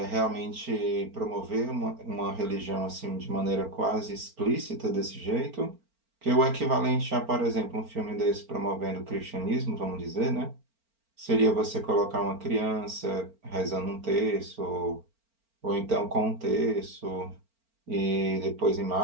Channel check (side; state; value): left; late; 4.4 ms